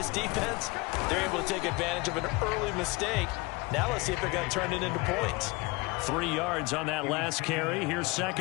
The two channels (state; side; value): quieter; right; 24.5 dB